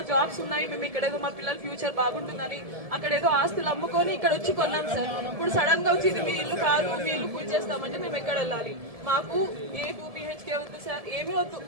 జాబ్స్ ఉన్నాయి, మేము ఇక్కడ ఏదో మా పిల్లల ఫ్యూచర్ బాగుంటుందని అక్కడ ఏదో ఆస్తులు అమ్ముకొని ఇక్కడ వచ్చి కొన్నాం సార్. ఇప్పుడు సడన్ గా వచ్చి ఇది మీ ఇల్లు కాదు, మీ ఇల్లు పూజ చేస్తామంటే మేము ఎక్కడ వెళ్ళాలి? మాకు ఏ 2 BHK వద్దు సార్, ఏమీ వద్దు.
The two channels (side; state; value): left; late; 1.7 ms